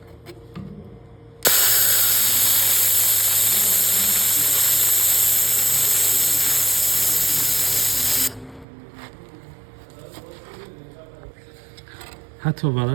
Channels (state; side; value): drops out; left; at 8.7 s